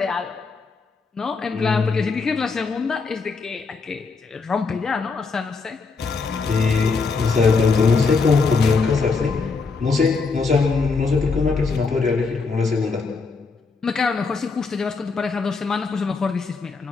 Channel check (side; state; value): right; quieter; 4.5 dB